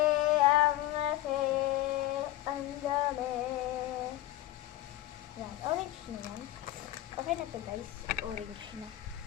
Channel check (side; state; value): right; quieter; 15.0 dB